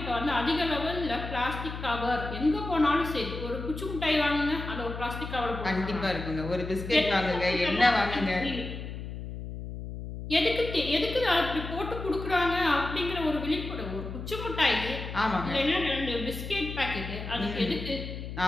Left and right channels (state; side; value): noise; left; hum, 8 dB below the sound